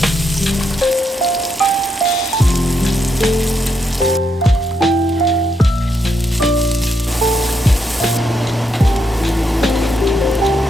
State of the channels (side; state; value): both; normal; correlation 0.79